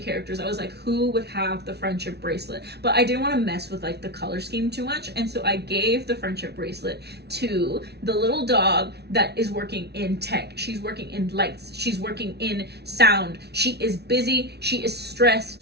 characters. I was like, who would have the friendship bracelet? But I didn't want to mess with like the color scheme too much, and so I gave the friendship bracelet to the little dog that is working in tech. She's working in lights. She's working in sound. She is busy. She is stressed.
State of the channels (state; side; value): late; left; 0.49 ms